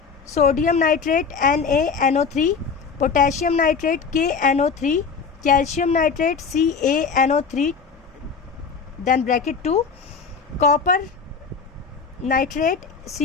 sodium nitrate NaNO3, potassium nitrate KNO3, calcium nitrate CaNO3 then bracket 2, copper nitrate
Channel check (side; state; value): right; quieter; 5.6 dB